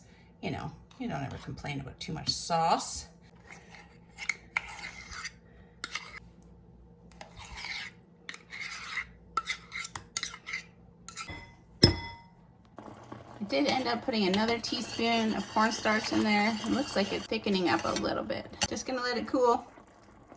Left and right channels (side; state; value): both; identical; correlation 1.00